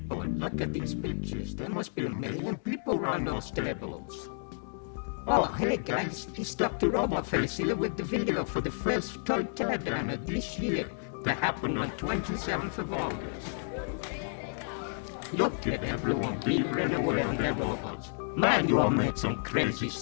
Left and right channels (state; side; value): silent; right; digital silence